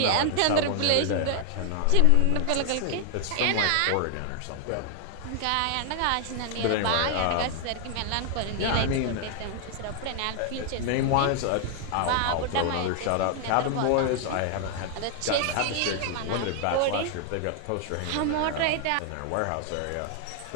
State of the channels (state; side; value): different; both; correlation 0.00